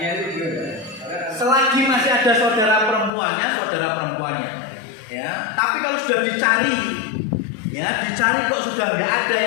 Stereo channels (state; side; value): drops out; right; at 3.1 s